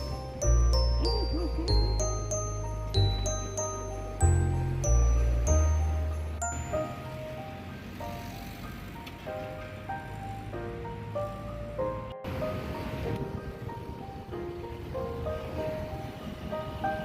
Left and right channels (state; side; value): identical; both; correlation 1.00